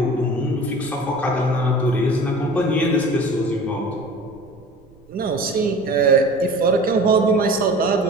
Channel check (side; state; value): right; noise; rumble, 28 dB below the sound